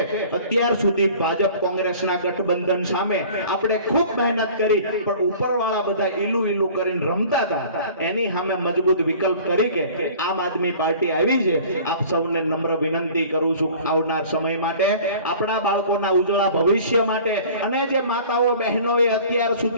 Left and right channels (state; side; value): inverted; both; correlation -0.46